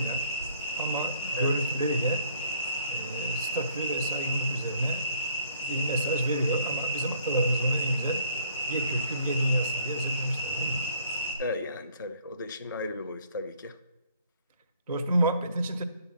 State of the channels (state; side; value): inverted; both; correlation -0.61